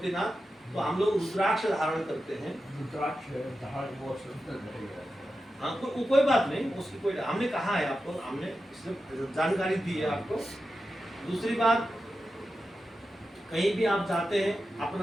तो हम लोग रुद्राक्ष धारण करते हैं। रुद्राक्ष हाँ, तो कोई बात नहीं, उसकी कोई, हमने कहा है आपको, हमने इसमें जानकारी दी है आपको। दूसरी बात, कहीं भी आप जाते हैं,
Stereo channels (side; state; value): both; normal; correlation 0.91